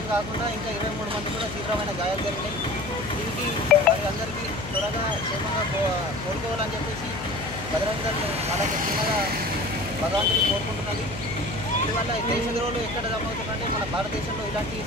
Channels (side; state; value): left; noise; hum, 10 dB below the sound